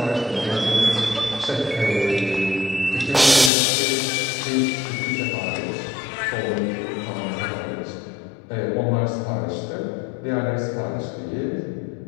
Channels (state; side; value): drops out; right; at 3.5 s